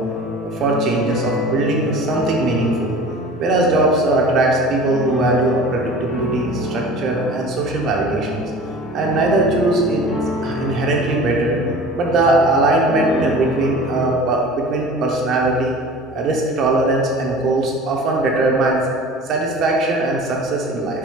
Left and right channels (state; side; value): normal; both; correlation 0.41